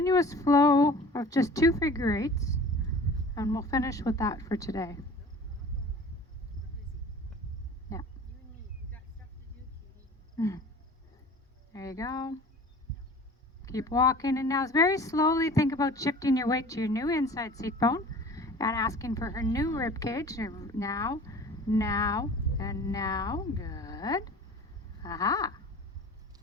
flow of just 2 figure eights. And we'll finish with that for today. We're busy. Yeah. You and me. We got stuff to do, Katie. There you go. Keep walking, and now very slowly think about shifting your weight to your new inside seat bone and asking for her new rib cage. Now, now, and now. Good. Aha.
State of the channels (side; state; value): both; normal; correlation 0.43